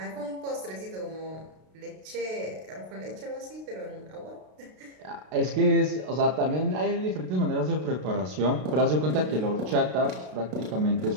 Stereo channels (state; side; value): late; left; 32 ms